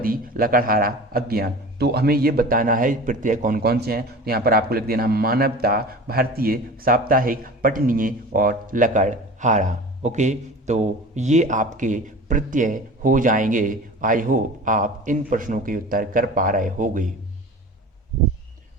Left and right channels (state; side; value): normal; both; correlation 0.37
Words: लकड़हारा, अज्ञान। तो हमें ये बताना है प्रत्यय कौन कौन से हैं। तो यहाँ पर आपको लिख देना मानवता, भारतीय, साप्ताहिक, पठनीय और लकड़हारा। ओके, तो ये आपके प्रत्यय हो जाएंगे। आई होप आप इन प्रश्नों के उत्तर कर पा रहे होंगे।